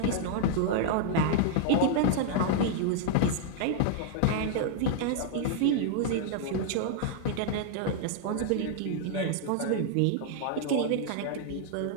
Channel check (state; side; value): different; both; correlation -0.01